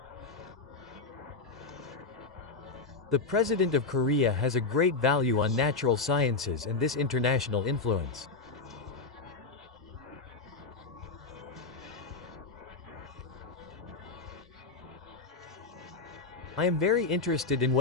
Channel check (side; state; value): right; quieter; 4.0 dB